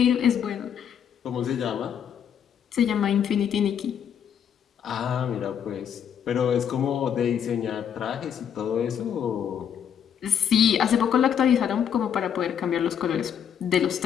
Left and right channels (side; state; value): right; quieter; 8.6 dB